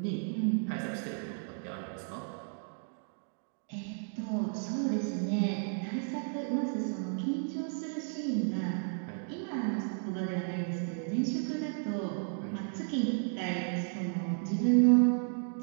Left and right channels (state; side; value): silent; left; 56 dB below the other